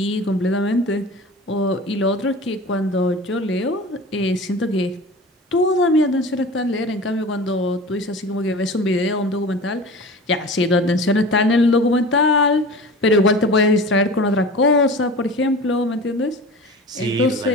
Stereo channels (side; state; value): both; normal; correlation 0.36